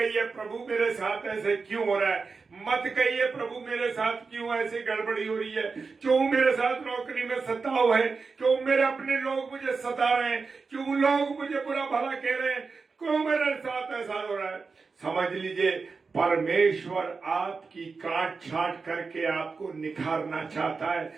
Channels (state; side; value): quieter; left; 4.6 dB